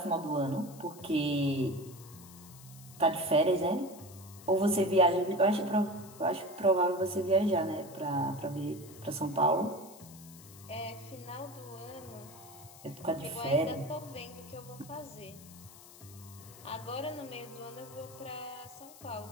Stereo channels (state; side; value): noise; left; hiss, 19 dB below the sound